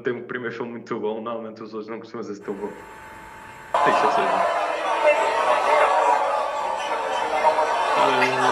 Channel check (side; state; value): both; identical; correlation 1.00